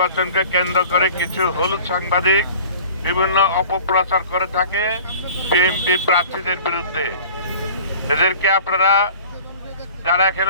কেন্দ্র করে কিছু হলুদ সাংবাদিক বিভিন্ন অপপ্রচার করে থাকে বিএনপি প্রার্থীদের বিরুদ্ধে। এদেরকে আপনারা যারা এখানে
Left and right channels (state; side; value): inverted; both; correlation -0.45